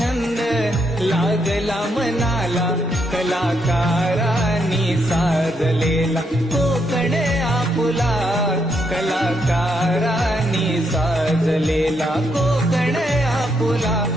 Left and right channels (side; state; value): both; normal; correlation 0.77